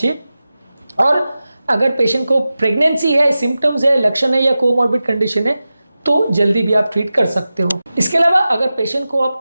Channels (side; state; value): both; inverted; correlation -0.94